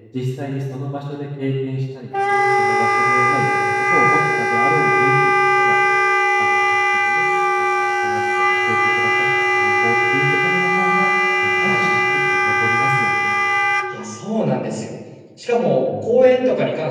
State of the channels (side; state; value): both; identical; correlation 1.00